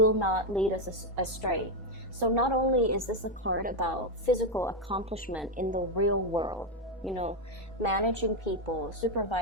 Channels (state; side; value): normal; both; correlation 0.05